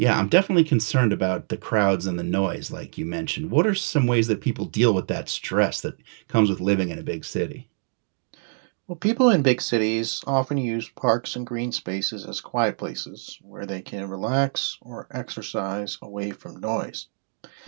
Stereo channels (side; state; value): left; silent; 62 dB below the other